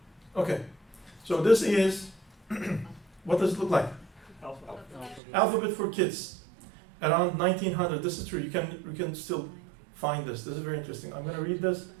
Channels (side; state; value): left; drops out; at 5.2 s